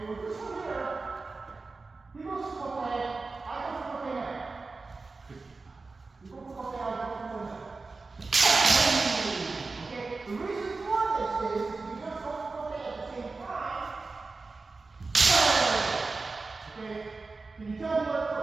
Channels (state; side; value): quieter; left; 3.9 dB